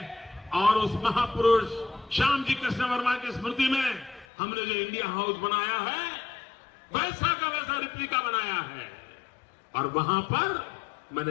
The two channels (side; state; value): right; drops out; at 4.2 s